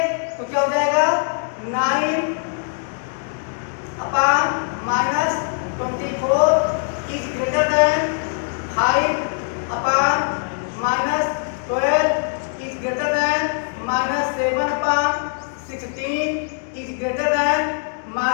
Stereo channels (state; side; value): silent; right; digital silence